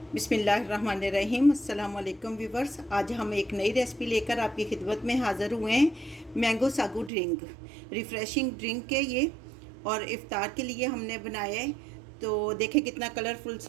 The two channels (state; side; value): drops out; left; at 7.1 s